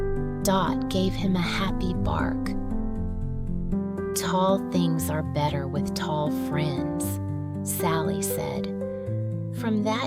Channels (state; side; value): identical; both; correlation 1.00